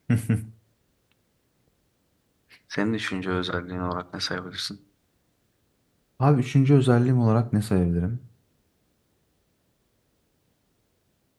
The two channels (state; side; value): identical; both; correlation 1.00